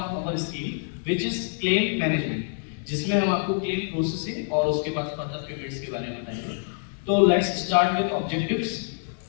our scheme, which is claim management, जिसमें हम आपको claim processing और उसके बाद further payments के बारे में बताएंगे. तो let's start with objectives.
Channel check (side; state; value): right; silent; 61 dB below the other